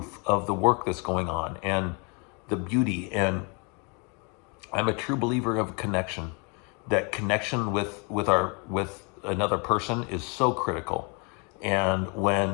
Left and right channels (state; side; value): quieter; right; 33.7 dB